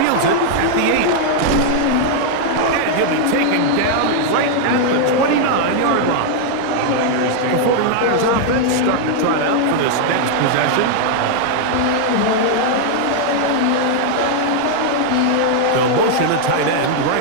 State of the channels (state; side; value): different; both; correlation 0.00